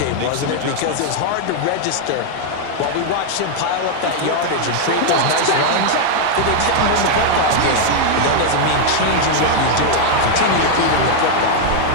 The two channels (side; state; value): both; different; correlation 0.00